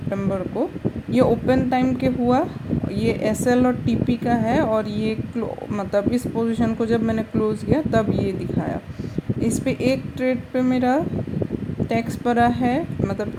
को। ये ओपन टाइम के हुआ। ये एसएल और टीपी का है और ये मतलब इस पोजीशन को जब मैंने क्लोज किया तब ये दिखाया। इस पे एक ट्रेड पे मेरा टैक्स पड़ा है, मतलब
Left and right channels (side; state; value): both; identical; correlation 1.00